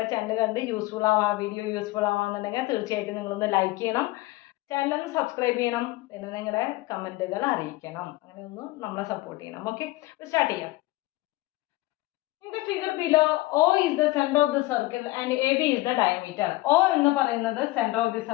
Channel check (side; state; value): right; quieter; 19.6 dB